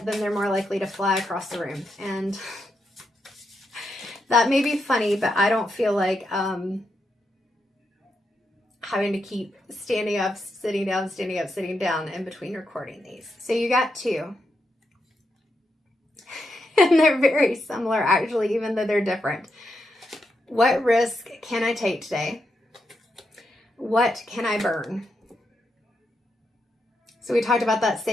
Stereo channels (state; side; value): normal; both; correlation 0.83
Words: then they're more likely to fly across the room. And that may be funny, but I don't feel like having to keep standing up, sitting down, standing up, sitting down in between recording these. So you got 2. And they're very similar, actually, even though they're different. What risk can I take today? What can I burn? So we talked about that